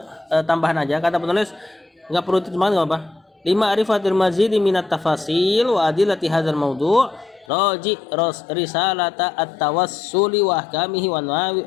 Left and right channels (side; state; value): right; drops out; at 7.5 s